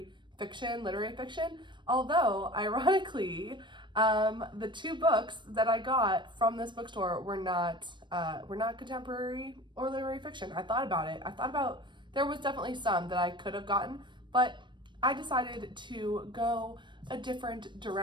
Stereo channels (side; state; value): left; late; 0.22 ms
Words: fiction, literary fiction, although ironically, the 2 books that I got from this bookstore were not contemporary or literary fiction. I thought about there was definitely some that I could have gotten, but I decided to go a different